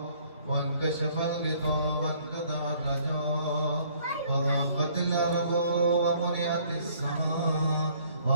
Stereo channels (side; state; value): both; inverted; correlation -0.60